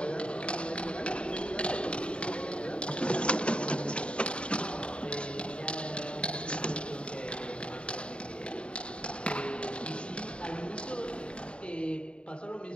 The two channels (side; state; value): right; late; 0.056 ms